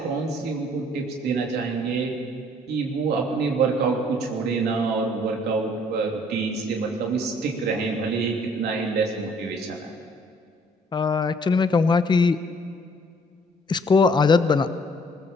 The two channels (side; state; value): both; normal; correlation 0.60